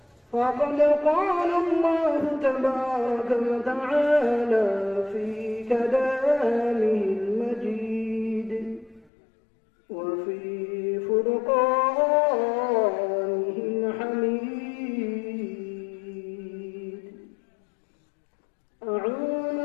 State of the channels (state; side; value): drops out; right; at 9.1 s